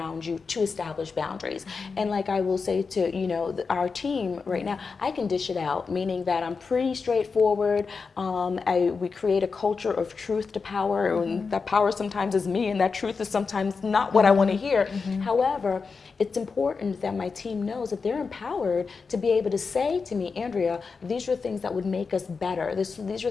you to establish boundaries. And like I will say to, you know, our team right now, I can dish it out, meaning that I'm pretty straightforward. We create a culture of truth to power, and that power sometimes is me, and that truth is sometimes not what I want to hear. However, it's important that my team knows that they're empowered to be able to say to me, Andrea, these are things that would make us better. These are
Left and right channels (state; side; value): quieter; right; 4.9 dB